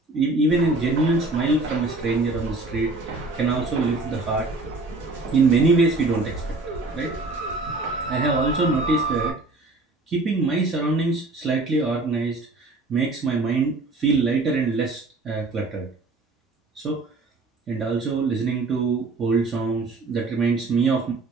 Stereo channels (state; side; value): quieter; left; 3.3 dB